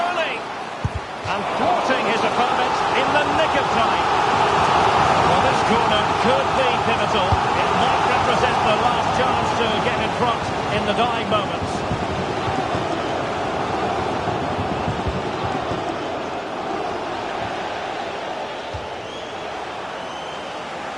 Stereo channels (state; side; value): identical; both; correlation 1.00